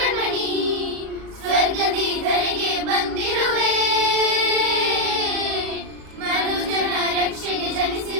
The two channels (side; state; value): left; late; 37 ms